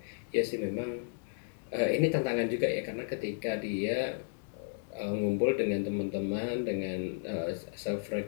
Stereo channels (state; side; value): silent; right; digital silence